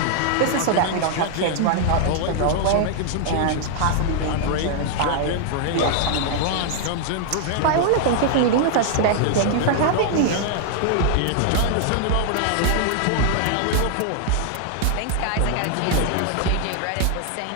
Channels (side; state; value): both; different; correlation 0.00